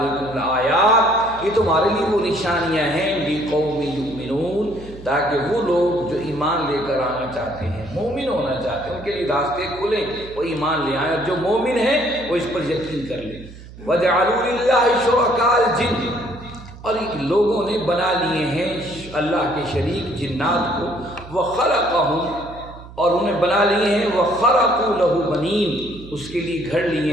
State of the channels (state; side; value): noise; right; hum, 17 dB below the sound